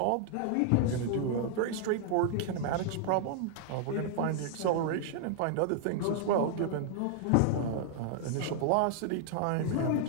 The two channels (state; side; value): different; both; correlation -0.01